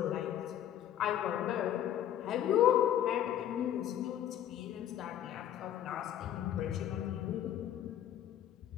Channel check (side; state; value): right; quieter; 11.0 dB